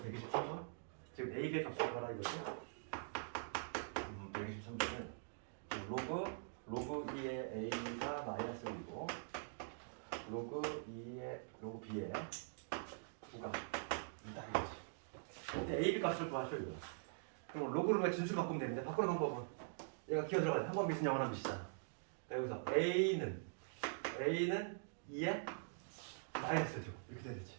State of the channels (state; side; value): silent; left; digital silence